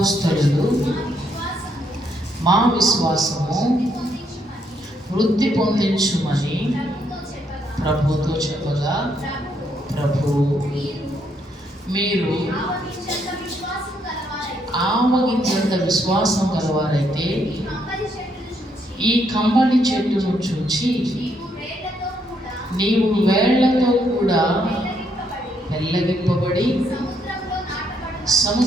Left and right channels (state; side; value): normal; both; correlation 0.74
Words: మా విశ్వాసము వృద్ధి పొందించుమని ప్రభుతో చెప్పగా, ప్రభువు మీరు ఆవగించంత విశ్వాసం గలవారైతే ఈ కంబళి చెట్టును చూచి నీవు వేళ్లతో కూడా వెల్లగింపబడి